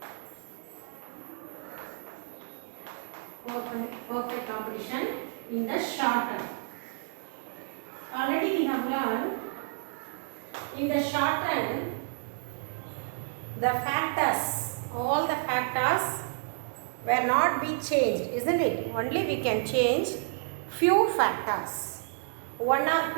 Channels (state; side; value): silent; left; digital silence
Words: Perfect competition in the short term. Already we have learned in the short term the factors, all the factors will not be changed, isn't it? Only we can change few factors. One or